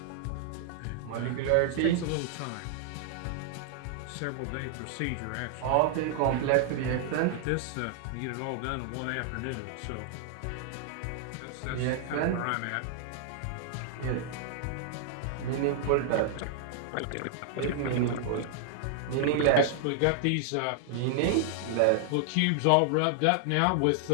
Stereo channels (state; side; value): different; both; correlation -0.01